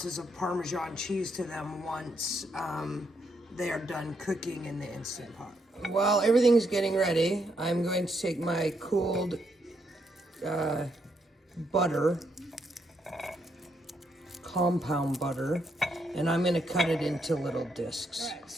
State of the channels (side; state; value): both; normal; correlation 0.77